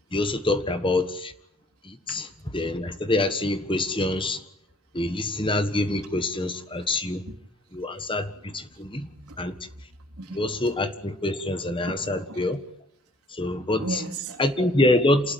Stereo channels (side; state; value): both; normal; correlation 0.58